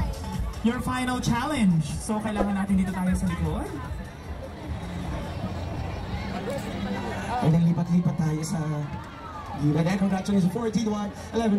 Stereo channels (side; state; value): both; identical; correlation 1.00